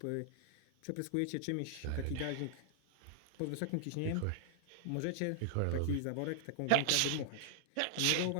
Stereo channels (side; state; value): both; different; correlation -0.01